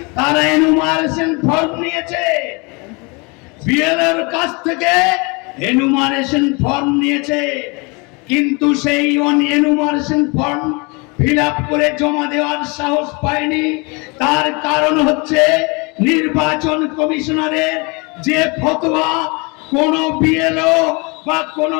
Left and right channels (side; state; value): right; quieter; 29.5 dB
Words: তারা এনুমারেশন ফর্ম নিয়েছে, বিএলওর কাছ থেকে এনুমারেশন ফর্ম নিয়েছে, কিন্তু সেই এনুমারেশন ফর্ম ফিল আপ করে জমা দেওয়ার সাহস পায়নি। তার কারণ হচ্ছে নির্বাচন কমিশনারের যে ফতোয়া, কোন বিএলও বা কোন